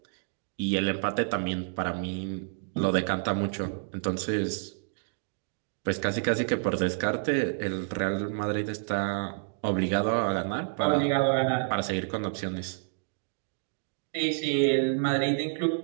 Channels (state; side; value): silent; left; digital silence